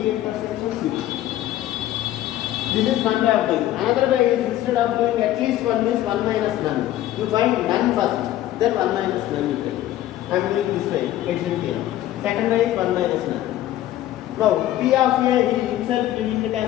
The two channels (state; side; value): quieter; right; 13.7 dB